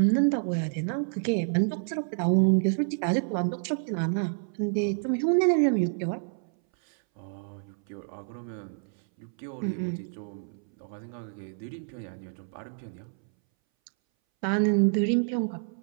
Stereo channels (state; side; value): silent; left; 59 dB below the other